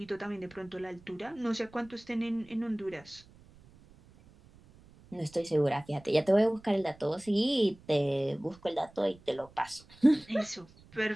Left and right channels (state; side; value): noise; right; rumble, 25 dB below the sound